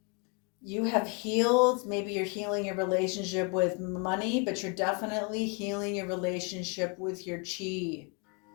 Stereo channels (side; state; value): right; quieter; 33.0 dB